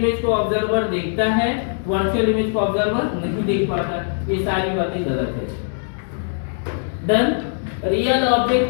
को ऑब्जर्वर देखता है, वर्चुअल इमेज को ऑब्जर्वर नहीं देख पाता। ये सारी बातें गलत है। डन। रियल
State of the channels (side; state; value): right; silent; digital silence